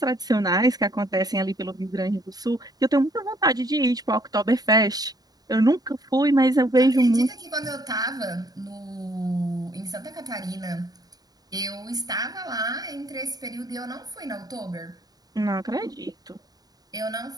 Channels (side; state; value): left; late; 0.18 ms